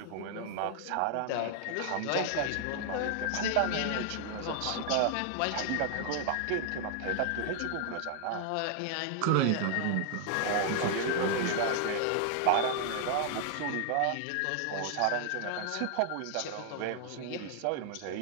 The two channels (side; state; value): both; different; correlation 0.00